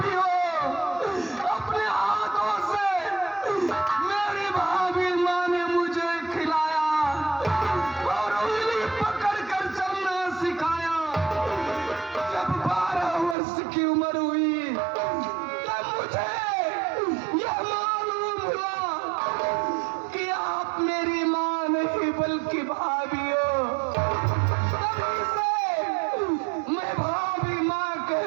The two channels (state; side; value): drops out; left; at 13.4 s